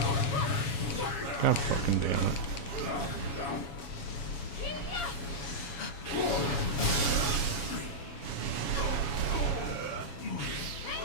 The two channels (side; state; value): right; late; 7.2 ms